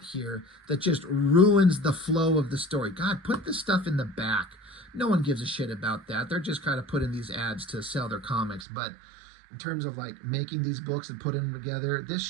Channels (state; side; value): drops out; left; at 8.7 s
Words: here that just ruins the flow of the story. God, put this stuff in the back. No one gives a shit about that. They're just kind of putting these ads to sell their comics, but in terms of like making these books and putting them together, this